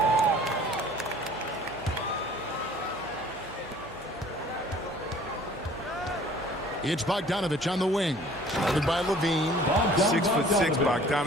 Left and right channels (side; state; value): right; noise; hum, 22 dB below the sound